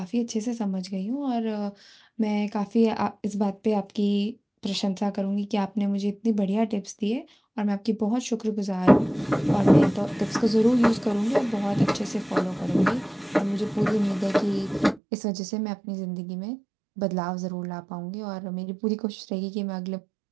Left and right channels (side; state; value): left; drops out; at 15.0 s